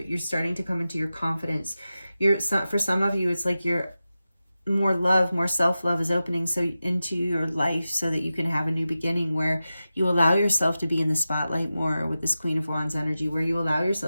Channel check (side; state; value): both; inverted; correlation -0.93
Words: starting to come into your confidence. For some of you, it's like you're more love, more self-love is opening so into your life, so that you can have a new beginning where you allow yourself to be in the spotlight more with this Queen of Wands energy, where you allow